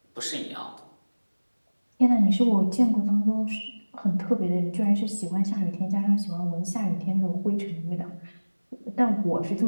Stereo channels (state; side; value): inverted; both; correlation -1.00